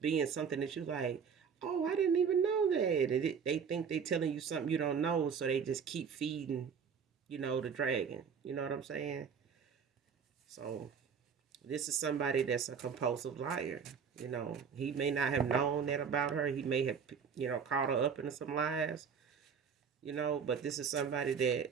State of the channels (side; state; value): left; quieter; 6.6 dB